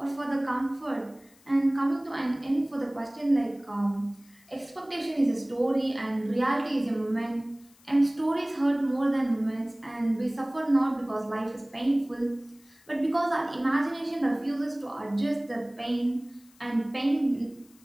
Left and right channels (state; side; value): noise; left; hiss, 29 dB below the sound